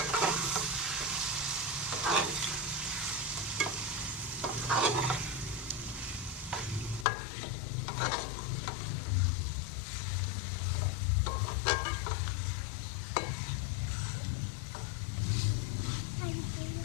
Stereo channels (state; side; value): drops out; right; at 7.1 s